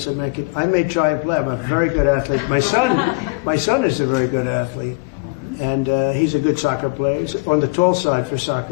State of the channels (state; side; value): quieter; right; 29.2 dB